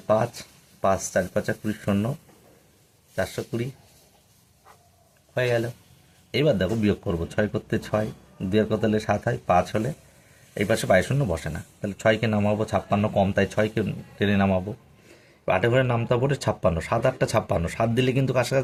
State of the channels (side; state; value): both; identical; correlation 1.00